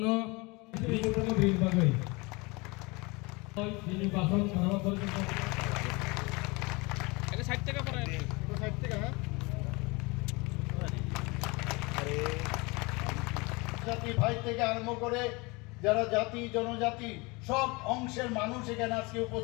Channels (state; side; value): quieter; right; 26.1 dB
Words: ini bagai ini bason nama berjumpa এটা সাইড থেকে পড়ে এটা সাইড থেকে হ্যাঁ আরে জাতি ভাই থেকে আরম্ভ করে যারা জাতি জনজাতি সব অংশের মানুষ এখানে আজকে